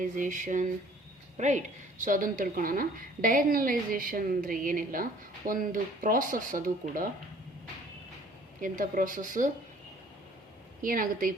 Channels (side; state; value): both; normal; correlation 0.54